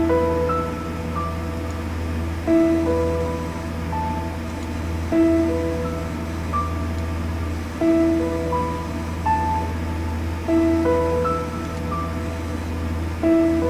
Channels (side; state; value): both; identical; correlation 1.00